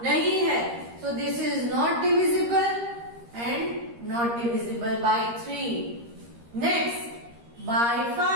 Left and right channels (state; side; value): late; left; 13 ms